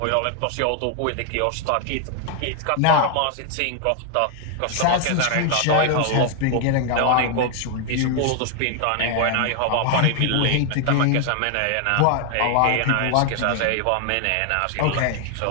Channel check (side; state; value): both; different; correlation 0.00